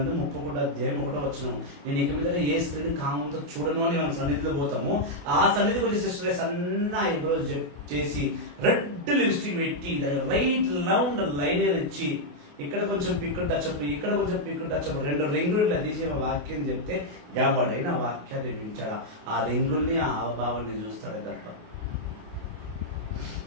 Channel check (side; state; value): left; late; 28 ms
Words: 31:1 నేను ఇక మీద ఏ స్త్రీని కామంతో చూడను అని మనం సన్నిధిలో పోతాము. ఆ సన్నిధికి వచ్చే సిస్టర్ సన్న ఐబ్రోస్ చేసి రెడ్ లిప్స్టిక్ పెట్టి రైట్ రౌండ్ లైనర్ ఇచ్చి ఇక్కడ కొంచెం పిక్కు టచ్అప్, ఇక్కడ కొంచెం పిక్కు టచ్అప్, 2 రింగులు ఇట్లా తీసి వాక్యం చెప్తే ఎవడైనా వాక్యాన్ని వింటాడా? ఆ రింగుల్ని ఆ హావభావాన్ని చూస్తాడే తప్ప.